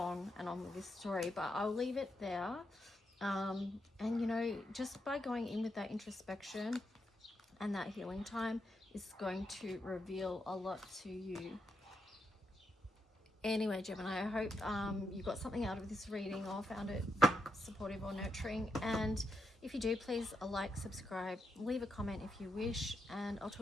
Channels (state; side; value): normal; both; correlation 0.83